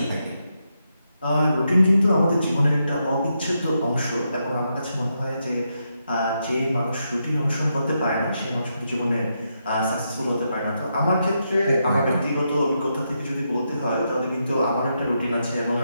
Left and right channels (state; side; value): inverted; both; correlation -0.83